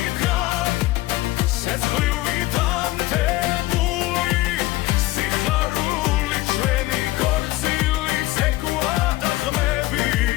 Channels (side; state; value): right; quieter; 17.9 dB